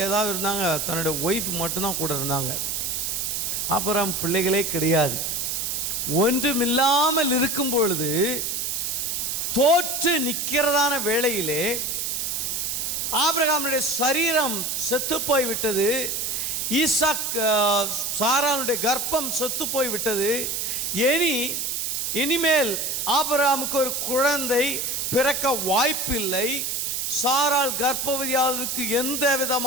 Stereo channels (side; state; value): right; noise; hiss, 1 dB below the sound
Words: ஏதாவது இருந்தாங்க, தன்னுடைய ஒய்ஃப் மட்டும்தான் கூட இருந்தாங்க. ஆபிரகாம் பிள்ளைகளே கிடையாது. ஒன்றுமில்லாமல் இருக்கும் பொழுது தோற்று நிற்கிறதான வேளையிலே ஆபிரகாமுடைய சரீரம் செத்து போய்விட்டது. ஈசாக் சாராளுடைய கர்ப்பம் செத்து போய்விட்டது. இனிமேல் ஆபிரகாமுக்கு ஒரு குழந்தை பிறக்க வாய்ப்பில்லை. சாராள் கர்ப்பவதியாவதற்கு எந்த